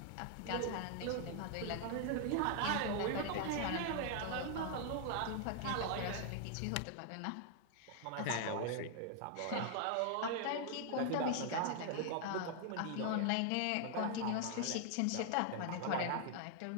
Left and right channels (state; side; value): different; both; correlation 0.00